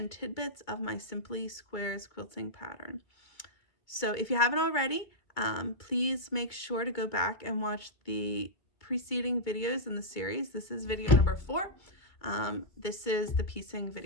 tidbits of my Simply Squares quilting pattern. So if you haven't already, please make sure to go back and watch the preceding videos in the series. This is video number 4. This is the piecing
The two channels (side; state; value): right; late; 2.3 ms